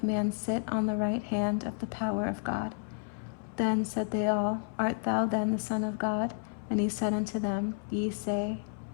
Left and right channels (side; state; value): right; silent; 57 dB below the other